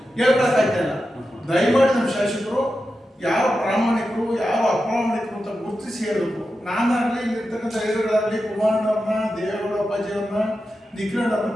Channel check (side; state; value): both; normal; correlation 0.90